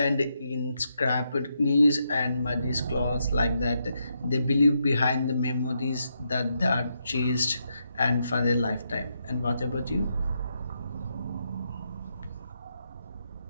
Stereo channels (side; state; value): both; inverted; correlation -0.81